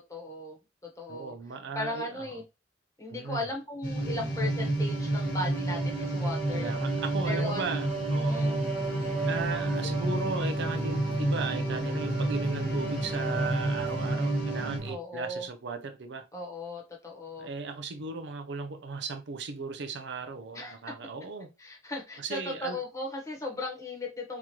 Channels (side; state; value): both; normal; correlation 0.62